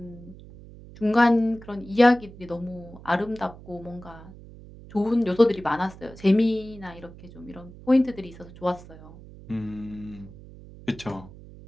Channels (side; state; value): right; noise; hum, 18 dB below the sound